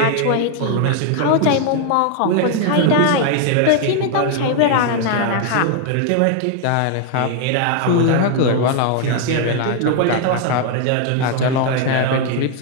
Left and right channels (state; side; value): different; both; correlation 0.00